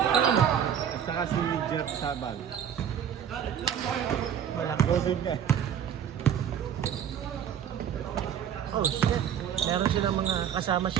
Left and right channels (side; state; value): left; quieter; 8.9 dB